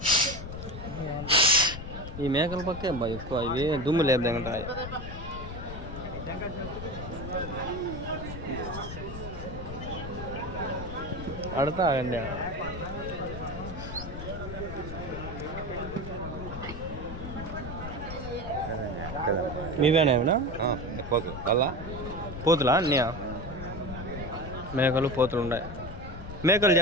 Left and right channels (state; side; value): noise; left; rumble, 9 dB below the sound